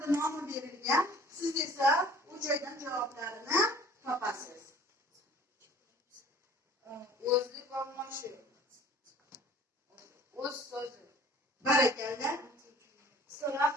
nomi berilgan. Siz esa u joydan javoblarini topasiz. O'zlik olmoshi. O'z so'zi. Barakalla. So'roq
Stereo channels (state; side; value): normal; both; correlation 0.50